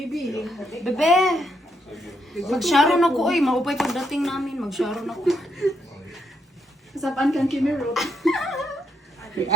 Bebe! Mag-sharon ako, oy. Maupay pagdating namin. Mag-sharon ako. Kasapan kang Kimi Road.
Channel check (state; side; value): normal; both; correlation 0.76